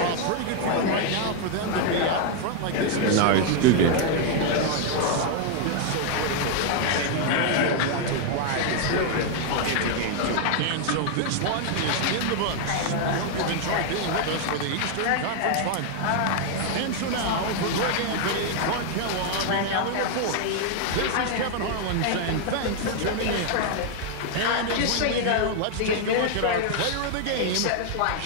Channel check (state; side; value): different; both; correlation 0.00